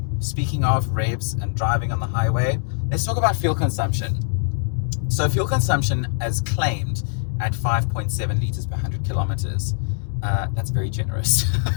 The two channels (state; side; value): silent; right; 64 dB below the other